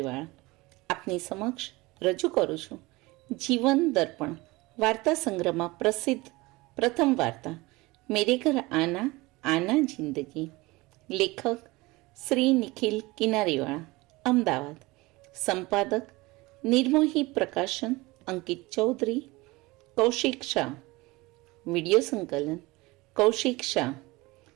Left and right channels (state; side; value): quieter; left; 22.0 dB